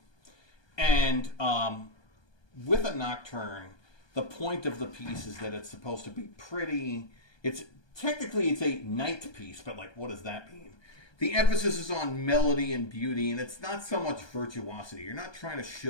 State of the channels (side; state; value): right; late; 1.2 ms